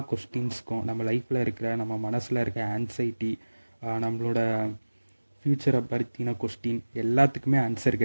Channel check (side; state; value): both; inverted; correlation -1.00